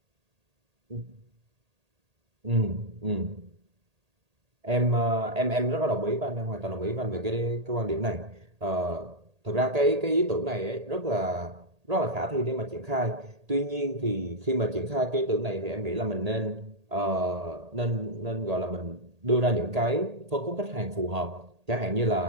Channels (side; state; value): left; late; 1.8 ms